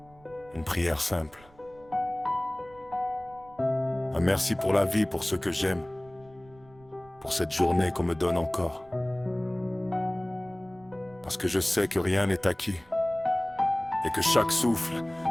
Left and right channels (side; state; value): right; noise; rumble, 26 dB below the sound